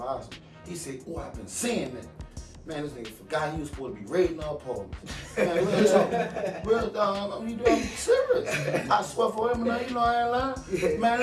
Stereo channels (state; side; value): identical; both; correlation 1.00